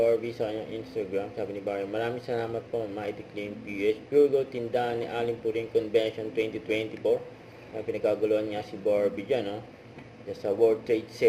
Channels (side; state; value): both; identical; correlation 1.00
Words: sa kanyang Instagram. Sabi ni Barbie, maraming salamat po, Mighty Clean PS. Pure Gold tindahan ni Aling Puring Convention 2024. Pinagkaguluhan niya si Barbie dyan, no? Dyan sa World Trade